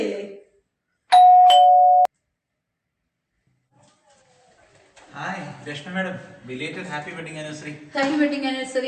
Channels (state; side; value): identical; both; correlation 1.00